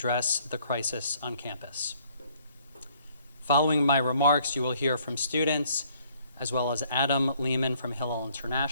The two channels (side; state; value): both; inverted; correlation -0.62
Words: the crisis on campus. Following my remarks, you will hear from students, as well as Adam Lehman from Hillel